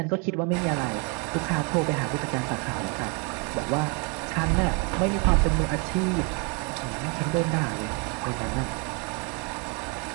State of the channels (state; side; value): quieter; left; 34.4 dB